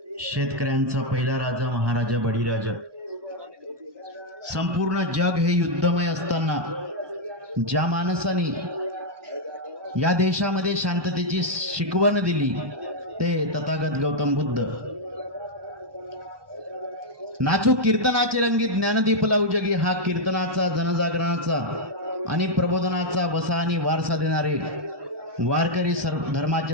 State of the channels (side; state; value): left; late; 1.2 ms